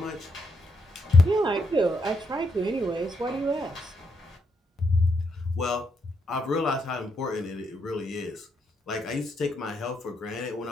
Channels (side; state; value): both; normal; correlation 0.78